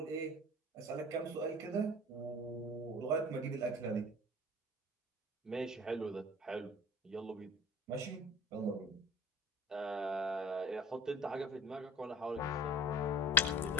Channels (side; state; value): both; normal; correlation 0.40